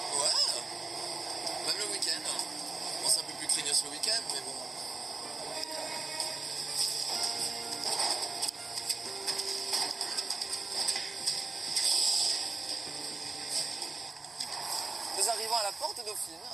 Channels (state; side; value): quieter; left; 3.8 dB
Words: Ouais, même le week-end. Bon, c'est un peu plus craignos le week-end, mais bon. Nous arrivons à la porte Dauphine.